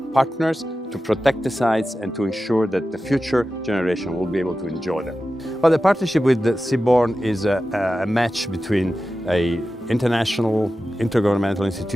partners to protect the sites and to ensure that the future generation will be able to enjoy them. Well, the partnership with the Seabourn is a match between an international intergovernmental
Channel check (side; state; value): both; normal; correlation 0.93